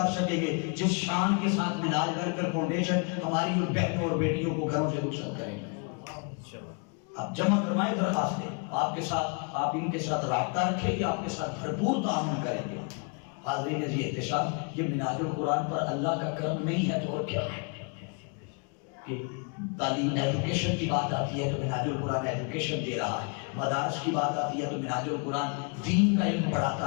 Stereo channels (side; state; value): right; quieter; 36.2 dB